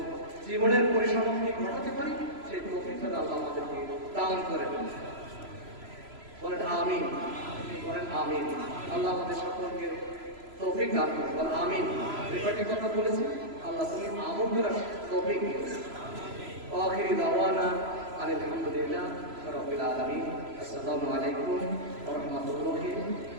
জীবনের পরিসমাপ্তি ঘটাতে পারি সেই তৌফিক আল্লাহ আমাদেরকে দান করেন। বলেন আমিন, বলেন আমিন। আল্লাহ আমাদের সকলকে তৌফিক দান করেন, বলেন আমিন। এই কথা বলেছি, আল্লাহ তুমি আমল করার তৌফিক দিয়েছেন। আখিরি দাওয়ানা আলহামদুলিল্লাহ রাব্বিল আলামিন। আসসালামু আলাইকুম ওয়া রাহমাতুল্লাহি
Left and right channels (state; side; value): late; left; 3.0 ms